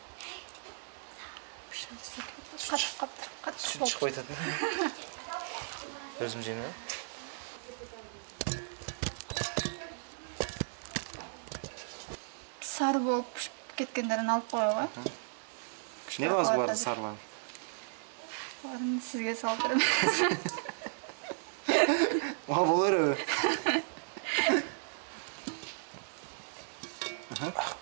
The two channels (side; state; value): left; silent; digital silence